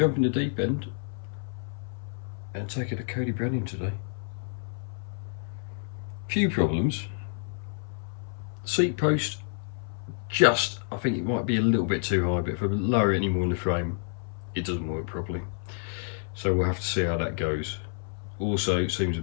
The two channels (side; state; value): right; silent; 59 dB below the other